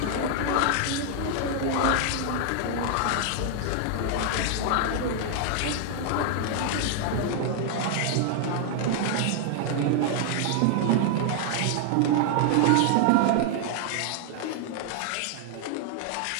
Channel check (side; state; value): both; different; correlation 0.00